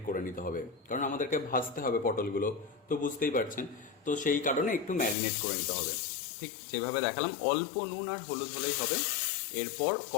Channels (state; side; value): drops out; right; at 5.2 s